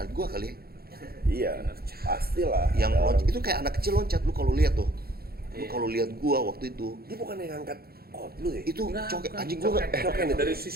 gue kali ya. Iya, pastilah. Yang loncat itu kayak anak kecil loncat, lu kalau lihat tuh. Lu kalau lihat gue waktu itu, Dia bukan yang ngangkat lu ya? itu Enggak, coket bukan. anjing gue Coket itu. Dari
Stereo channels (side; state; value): left; late; 0.45 ms